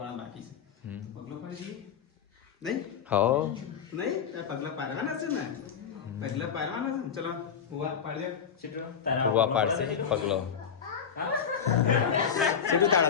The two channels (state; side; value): quieter; right; 7.3 dB